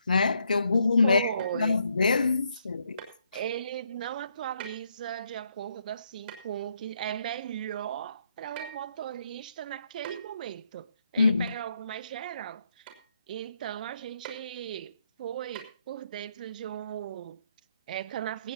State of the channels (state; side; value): inverted; both; correlation -0.74